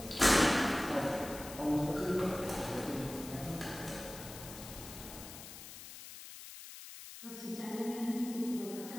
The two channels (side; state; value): left; noise; hiss, 13 dB below the sound